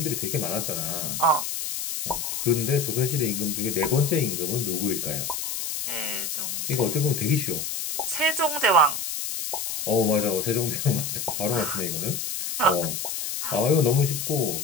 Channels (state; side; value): noise; left; hiss, 4 dB below the sound